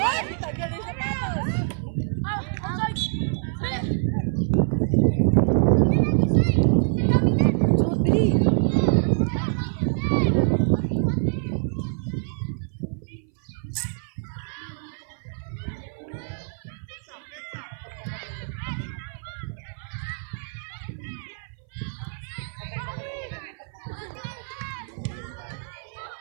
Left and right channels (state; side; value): silent; left; 58 dB below the other